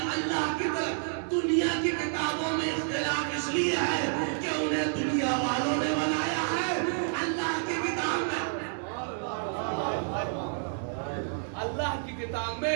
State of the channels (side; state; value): left; silent; digital silence